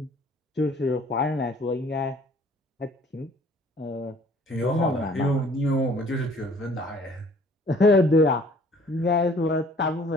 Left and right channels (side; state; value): both; normal; correlation 0.55